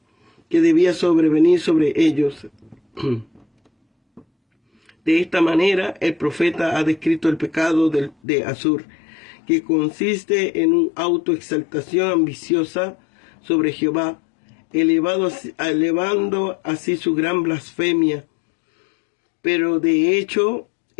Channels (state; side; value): drops out; right; at 8.2 s